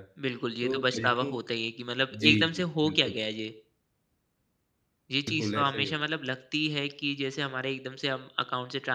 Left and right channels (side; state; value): both; identical; correlation 1.00